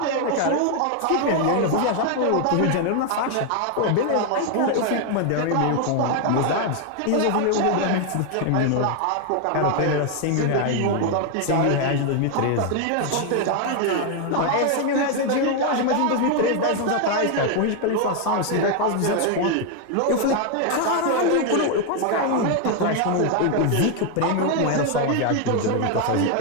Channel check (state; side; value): different; both; correlation 0.01